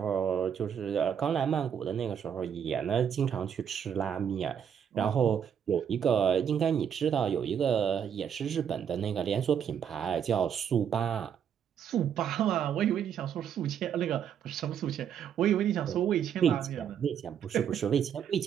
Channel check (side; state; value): left; quieter; 8.3 dB